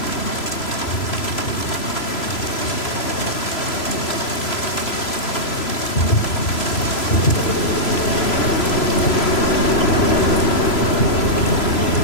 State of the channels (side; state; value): right; late; 3.0 ms